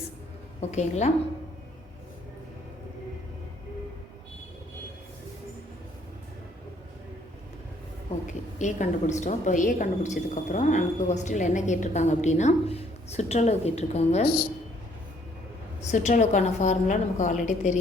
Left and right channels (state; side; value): normal; both; correlation 0.64